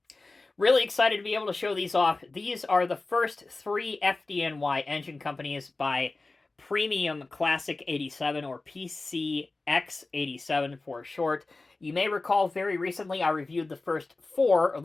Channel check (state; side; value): quieter; right; 3.4 dB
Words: Really excited to be able to show these off. These are the first three FDNY engine companies by Premium ClassiXXs, or PCX87 for short. You may recall very recently I reviewed the first four